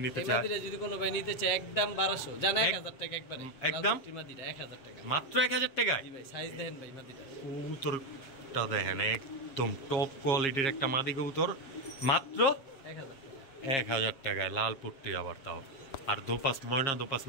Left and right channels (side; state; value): right; late; 7.3 ms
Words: নিতে চায়, মাদিটা যদি কোনো ভাই নিতে চায় একদম 1200 জান 1000 টাকা একবারে, একদম মাদিটা 1000 টাকা, মাত্র 1000 টাকায়। জি ভাই। সাইজ দেখেন ভাই মাদিটা, কবুতরটা দেখেন, একদম টপ কোয়ালিটির একটা মাদি কবুতর, মাত্র 1000 টাকায় লাল পুট্টি আবার, তাও আর দোপাস ময়না দোপাস